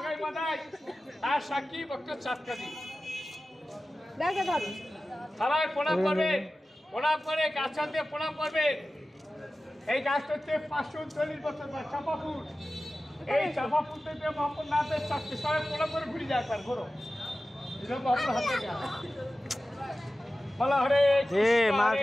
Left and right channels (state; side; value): normal; both; correlation 0.95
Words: মাদাই, তার সাক্ষী ভক্ত চাঁদ কাজী। সবাই প্রণাম করবে, প্রণাম করে গাছ দিয়ে প্রণাম করবে। এই গাছটা হচ্ছে 539 বছর বয়স, চাপা ফুল। এই চাপা ফুল থেকে মহাপুর নাথের চাকরি সবাই প্রণাম করে ঘুরে যায় একবার ঘোরো। মহাপুর হাতে গাছ বলা হরে